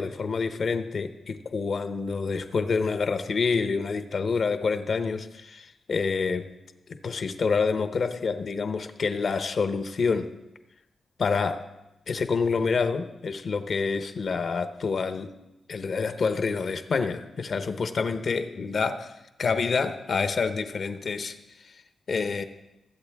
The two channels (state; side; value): quieter; right; 4.5 dB